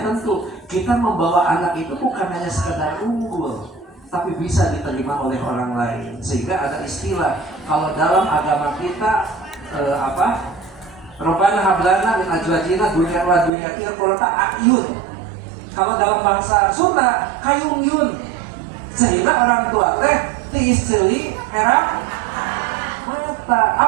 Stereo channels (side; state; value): left; drops out; at 13.5 s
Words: tentu kita membawa anak itu bukan hanya sekedar unggul, tapi bisa diterima oleh orang lain. Sehingga ada istilah kalau dalam agama kita Rabbana hablana min azwajina dzurriyyatan qurrata a'yun. Kalau dalam bahasa Sunda kayung yun. Sehingga orang tua teh ti istri herang mata.